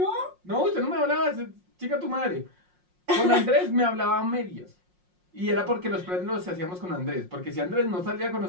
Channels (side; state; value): left; late; 5.6 ms